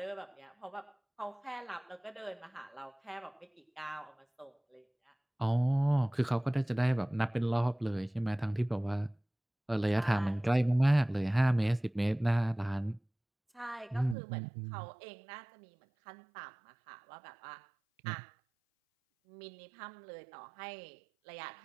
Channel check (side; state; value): left; drops out; at 14.2 s